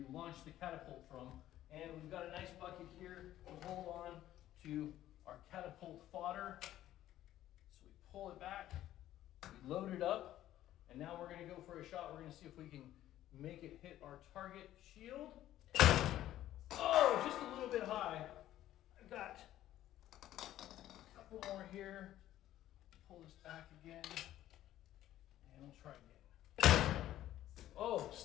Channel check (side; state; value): right; quieter; 13.3 dB